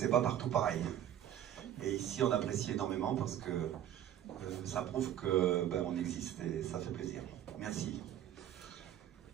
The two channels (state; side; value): quieter; left; 11.0 dB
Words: pas partout pareil. Et ici on apprécie énormément parce que ça prouve que on existe et ça fait plaisir. Merci.